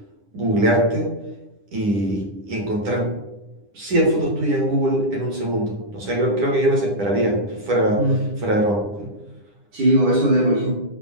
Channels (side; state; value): left; late; 9.9 ms